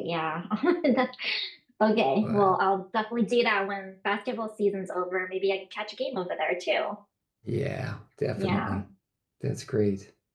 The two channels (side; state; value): both; identical; correlation 1.00